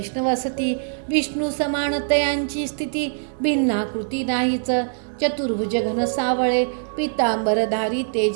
असती. विष्णू समान तयांची स्थिती भिन्नाकृती नाहीच. चतुर्भुज घन सावळे पितांबरधारी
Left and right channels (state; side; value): silent; left; 64 dB below the other